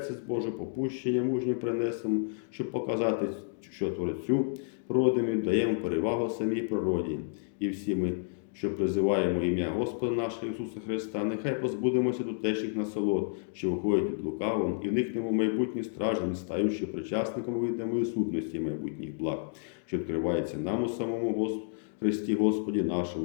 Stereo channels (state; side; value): silent; right; digital silence